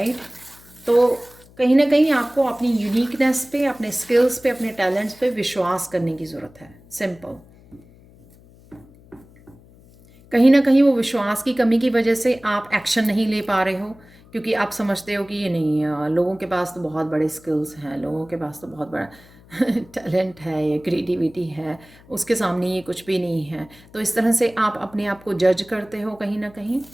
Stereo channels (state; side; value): noise; left; hum, 25 dB below the sound